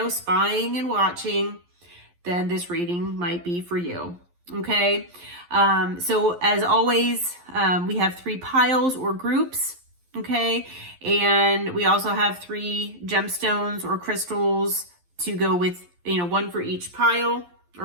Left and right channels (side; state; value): left; late; 11 ms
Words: spying and watching, then this reading might be for you. Okay. So as always, we have 3 piles or groups. Okay. And we also have 3 gemstones or crystals to go with, 1 for each pile